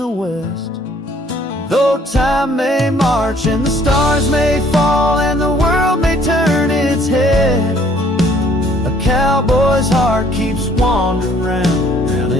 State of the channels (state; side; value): normal; both; correlation 0.61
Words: west. Though time may march and the stars may fall and the world may turn its head, a cowboy's heart keeps wandering round